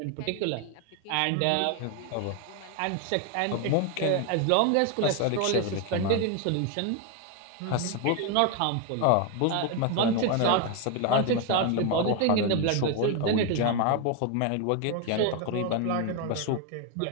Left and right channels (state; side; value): different; both; correlation 0.01